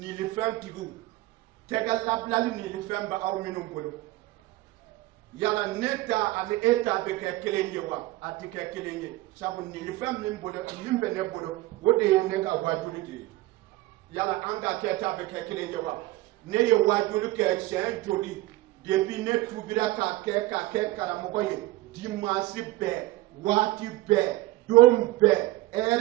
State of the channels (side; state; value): left; quieter; 18.0 dB